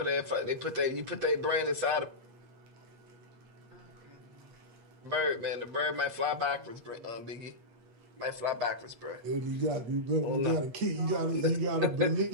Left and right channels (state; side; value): late; left; 8.4 ms